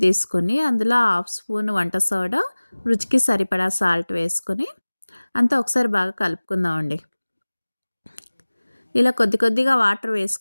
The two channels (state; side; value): inverted; both; correlation -1.00